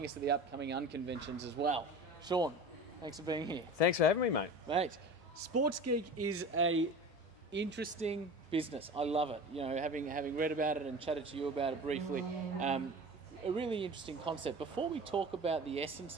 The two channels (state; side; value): noise; left; hum, 29 dB below the sound